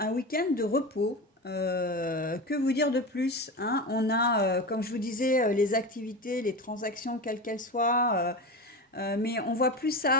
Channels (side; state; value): both; normal; correlation 0.24